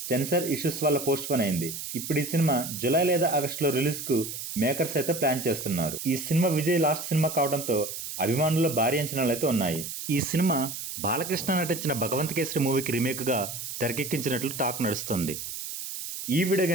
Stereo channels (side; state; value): right; noise; hiss, 7 dB below the sound